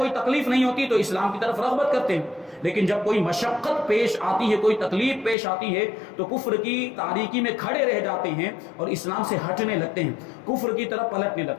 تکلیف نہیں ہوتی، تو اسلام کی طرف رغبت کرتے ہیں، لیکن جب کوئی مشقت پیش آتی ہے، کوئی تکلیف پیش آتی ہے تو کفر کی تاریکی میں کھڑے رہ جاتے ہیں اور اسلام سے ہٹنے لگتے ہیں، کفر کی طرف پلٹنے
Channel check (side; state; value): right; drops out; at 5.4 s